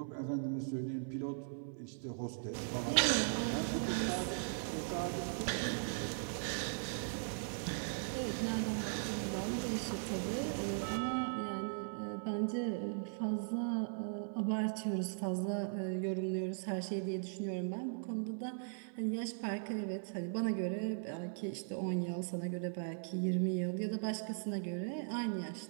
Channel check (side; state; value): left; silent; 52 dB below the other